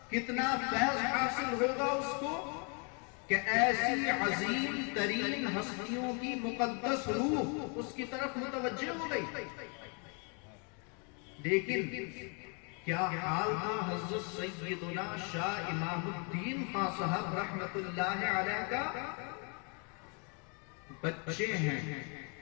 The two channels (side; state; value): right; quieter; 36.1 dB